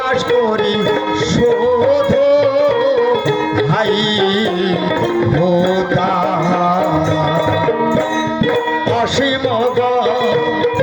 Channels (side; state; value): both; identical; correlation 1.00